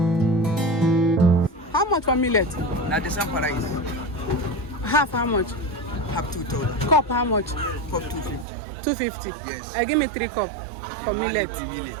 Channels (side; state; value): left; drops out; at 8.5 s